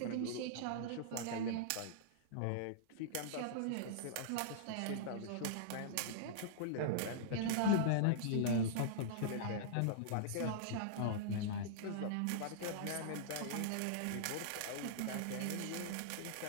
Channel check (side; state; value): both; different; correlation -0.02